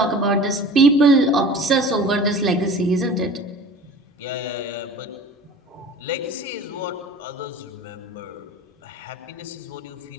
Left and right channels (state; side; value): normal; both; correlation 0.41